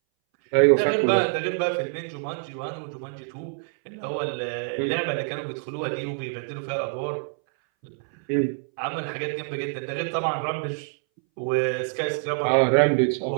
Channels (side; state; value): left; silent; 61 dB below the other